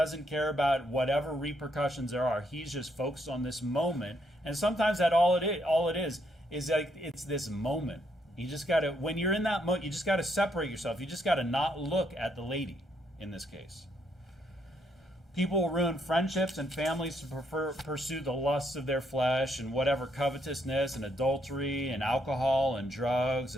care about whatever repercussions there are. He's just focused on this moment. And sometimes that all it is like it's this moment. You just got to, when you're in that moment, you just got to separate yourself. You just got to not look at the lady in this case. People will ruin friendships and families to pursue the lusts of their flesh and whatever covetousness and adultery and alcohol and drugs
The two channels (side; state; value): both; normal; correlation 0.74